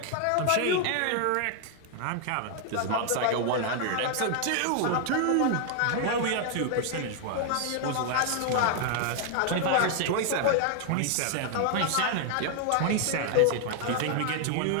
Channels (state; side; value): different; both; correlation 0.00